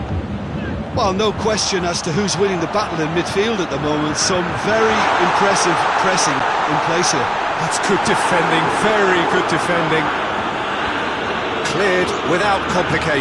Well, no question as to who's winning the battle in midfield at the moment. Some very impressive pressing in place here. That's good defending, very good defending. Cleared without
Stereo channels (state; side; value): identical; both; correlation 1.00